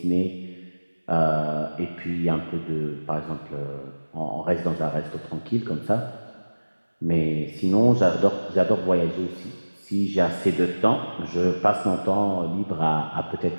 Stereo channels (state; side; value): inverted; both; correlation -1.00